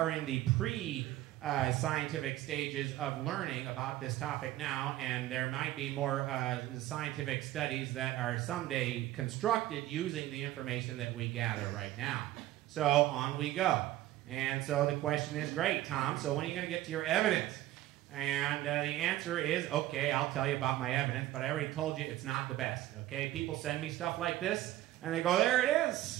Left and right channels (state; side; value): quieter; left; 14.9 dB